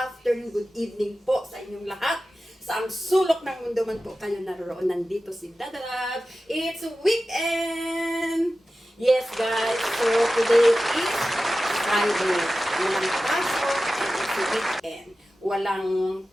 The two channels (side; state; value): both; normal; correlation 0.94